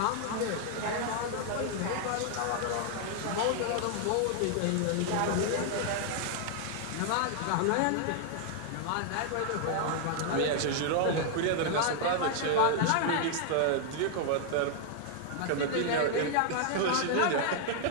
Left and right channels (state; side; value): different; both; correlation 0.00